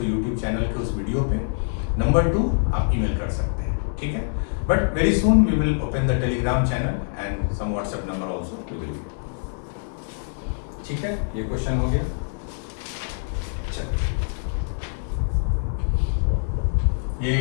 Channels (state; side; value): silent; right; digital silence